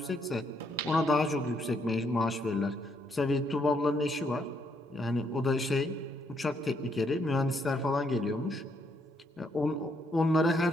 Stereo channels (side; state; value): both; normal; correlation 0.73